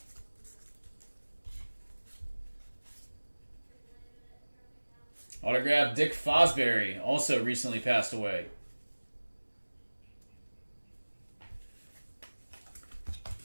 Autograph Dick Fosbury, also recently passed away.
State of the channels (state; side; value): inverted; both; correlation -1.00